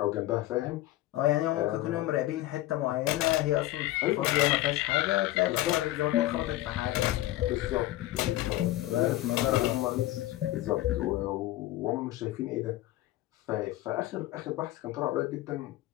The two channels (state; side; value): quieter; right; 15.9 dB